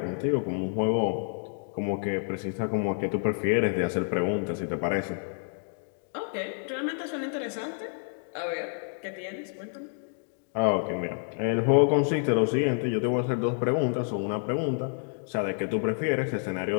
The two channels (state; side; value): silent; right; 57 dB below the other